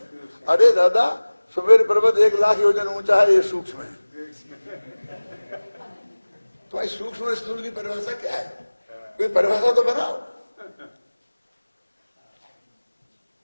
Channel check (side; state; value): both; inverted; correlation -1.00